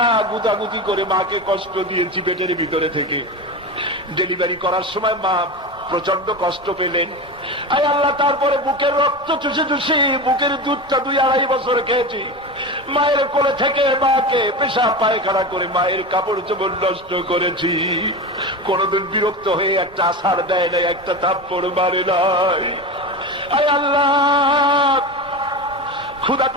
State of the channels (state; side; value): normal; both; correlation 0.24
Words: গুদাগুদি করে মাকে কষ্ট দিয়েছি পেটের ভিতরে থেকে। ডেলিভারি করার সময় মা প্রচন্ড কষ্ট পেলেন। আয় আল্লাহ, তারপরে বুকের রক্ত চুষে চুষে বুকের দুধটা 2-2.5 বছর খেয়েছি। মায়ের কোলে থেকে মাকে পেশাব পায়খানা করে মায়ের কাপড় চোপড় নষ্ট করেছি। কোনদিন বিরক্ত হয়ে একটা আছাড় দেয় নাই, একটা থাপ্পড় মারে নাই। আয় আল্লাহ, ক্ষুধা